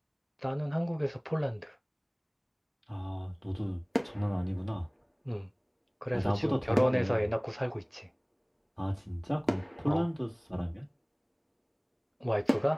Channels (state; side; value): identical; both; correlation 1.00